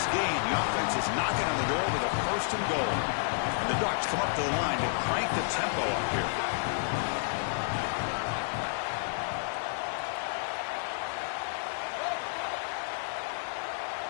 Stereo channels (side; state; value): right; silent; digital silence